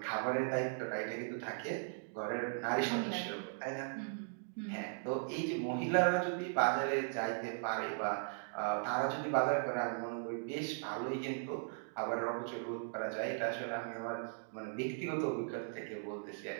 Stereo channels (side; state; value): left; silent; digital silence